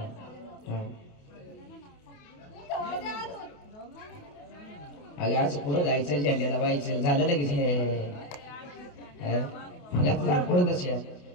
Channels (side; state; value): right; late; 28 ms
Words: अगं असं पुढं जायचं झेंड्याला व्हायचं झालं लगेच पुढं तसे